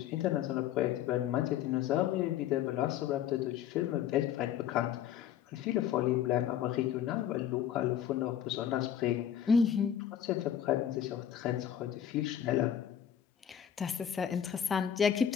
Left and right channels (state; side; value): quieter; right; 9.6 dB